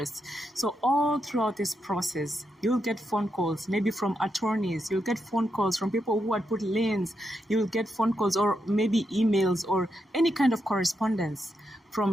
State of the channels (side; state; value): both; normal; correlation 0.83